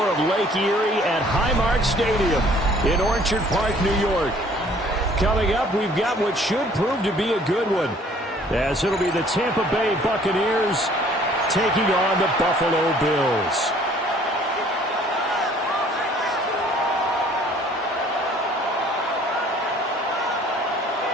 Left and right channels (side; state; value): both; normal; correlation 0.56